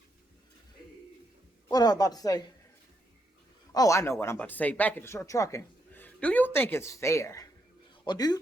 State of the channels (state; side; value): normal; both; correlation 0.79